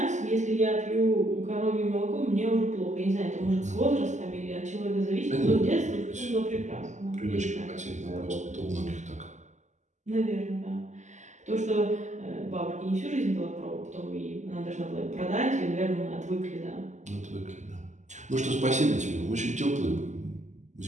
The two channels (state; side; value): late; left; 0.34 ms